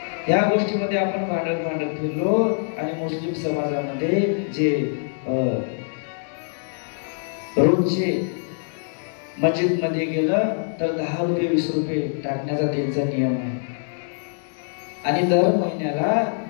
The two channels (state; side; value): silent; right; digital silence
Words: या गोष्टीमध्ये आपण भांडत फिरलो. आणि मुस्लिम समाजामध्ये जे रोजचे मस्जिद मध्ये गेलं तर 10 रुपये 20 रुपये टाकण्याचा त्यांचा नियम आहे. आणि दर महिन्याला